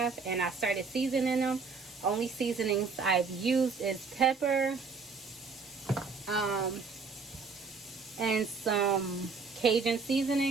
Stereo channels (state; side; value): quieter; left; 4.8 dB